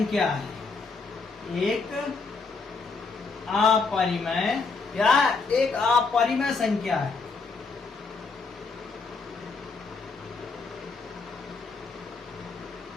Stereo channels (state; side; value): quieter; right; 4.4 dB